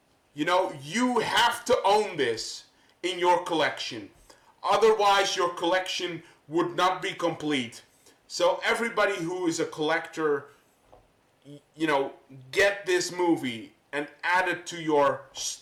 you know, you have to own this in your collection. Otherwise, your collection would not be complete. So everybody who is a collector, you know, get this movie and add it to your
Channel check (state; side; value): identical; both; correlation 1.00